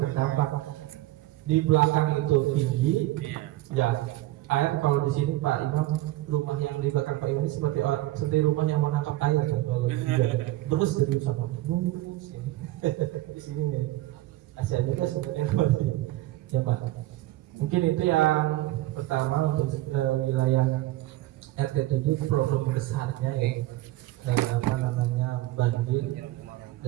terdampak. Di belakang itu tinggi ya air. Kalau di sini Pak Imam, rumah yang di belakang Pak Imam ini seperti rumah yang menangkap air kan, kalau hujan terus dari sama sini di sini nih Asia juga sebenarnya masih ya Pak. Mungkin itu yang pertama untuk wilayah RT 7 problem besarnya ya banjir,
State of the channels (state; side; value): quieter; left; 16.6 dB